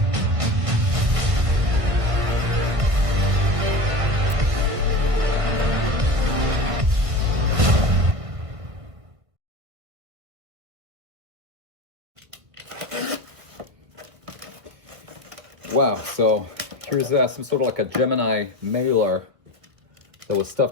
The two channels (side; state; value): left; late; 1.5 ms